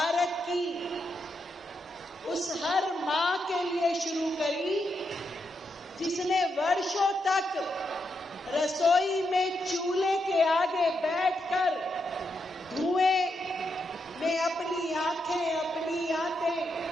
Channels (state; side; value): normal; both; correlation 0.83